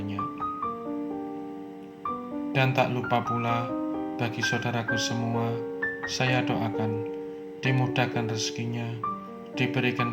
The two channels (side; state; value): both; identical; correlation 1.00